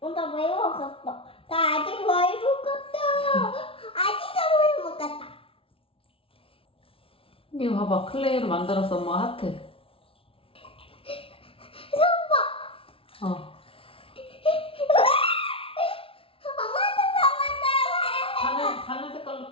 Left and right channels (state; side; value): late; right; 0.26 ms